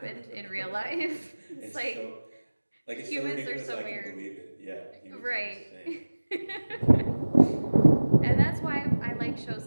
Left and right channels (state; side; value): inverted; both; correlation -1.00